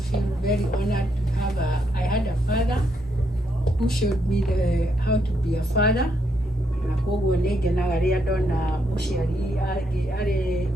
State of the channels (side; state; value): both; normal; correlation 0.77